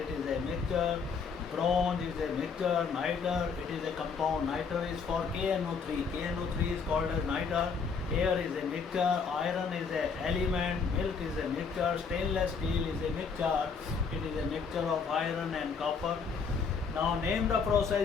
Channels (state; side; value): quieter; right; 5.6 dB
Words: is a mixture. Bronze is a mixture. Nitre, it is a compound. Nitre is for KNO3. KNO3 is called as nitre. Air is a mixture. Iron is an element. Milk is a mixture. Stainless steel is a mixture. It is a mixture of iron and copper. Now name the